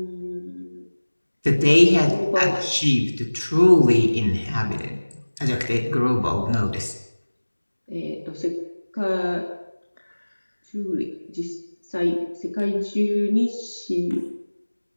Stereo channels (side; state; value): both; inverted; correlation -1.00